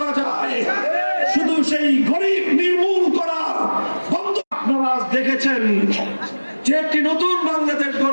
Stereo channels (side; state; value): both; inverted; correlation -1.00